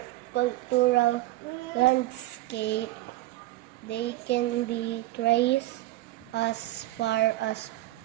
cultural landscape. They can be traced as far as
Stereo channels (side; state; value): left; quieter; 16.9 dB